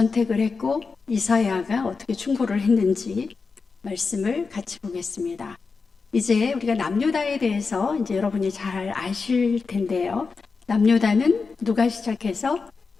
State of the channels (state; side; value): quieter; right; 4.7 dB